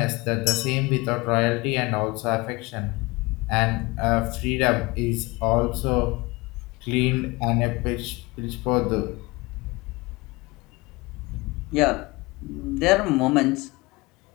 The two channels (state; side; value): quieter; right; 23.7 dB